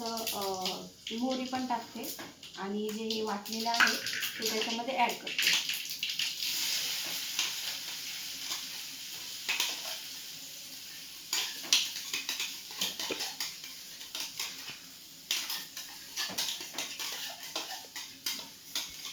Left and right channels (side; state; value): both; identical; correlation 1.00